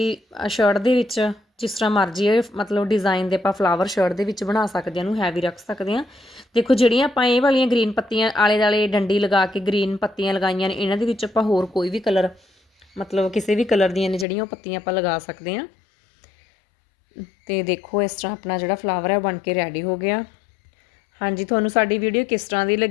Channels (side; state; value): right; drops out; at 14.2 s